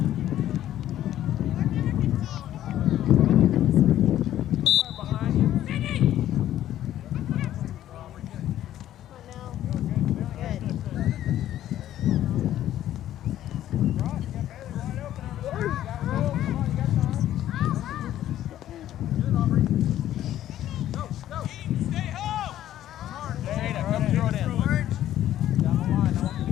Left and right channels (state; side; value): quieter; right; 12.4 dB